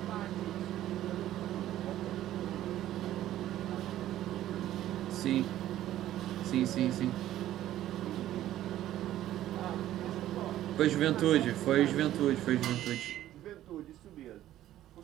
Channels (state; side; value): quieter; left; 13.2 dB